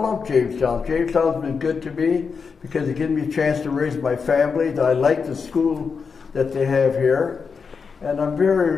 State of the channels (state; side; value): quieter; right; 5.5 dB